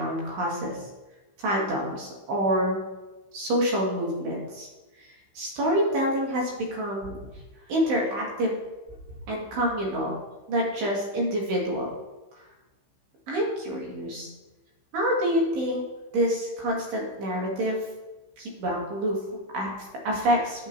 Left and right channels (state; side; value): late; left; 15 ms